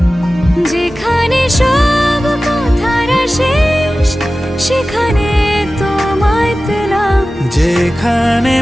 যেখানে সব কথার শেষ সেখানে তোমায় পেলাম যেখানে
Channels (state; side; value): normal; both; correlation 0.96